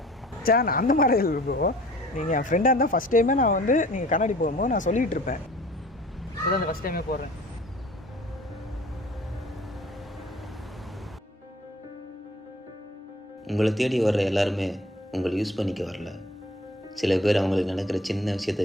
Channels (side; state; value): both; normal; correlation 0.49